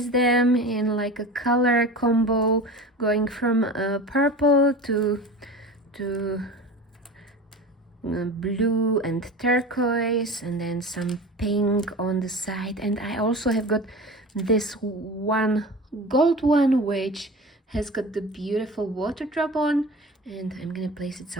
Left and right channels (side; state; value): both; normal; correlation 0.34